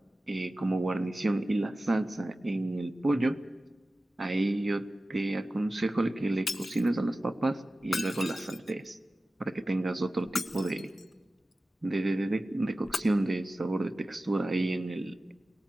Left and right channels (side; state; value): both; normal; correlation 0.95